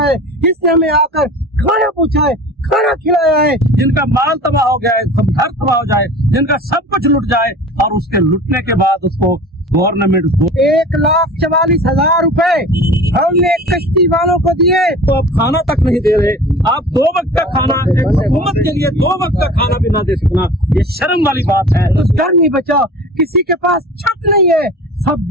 जिसने हमें आकर खाना पूछा है, खाना खिलाया है। जिनका माल तबाह हो गया है, सब घर तबाह हो जाए, जिनका सब कुछ लुट जाए और उसके लुटने के बाद उसको गवर्नमेंट 1,44,000 रुपए हमने कश्ती वालों को दिए। तो आप खाना तक नहीं दे रहे। आप 2 वक्त का खाना एक हुकूमत के लिए 2 वक्त का खाना भी ना दे सकना, ये शर्म वाली बात है। तो घर नहीं बचा, किसी के पास छत नहीं है,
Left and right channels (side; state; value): both; normal; correlation 0.39